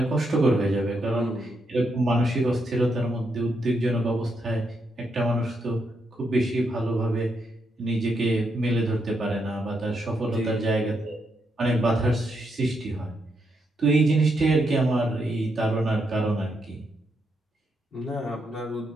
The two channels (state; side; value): normal; both; correlation 0.80